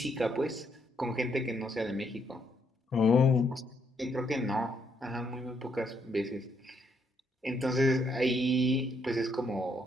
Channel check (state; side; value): normal; both; correlation 0.73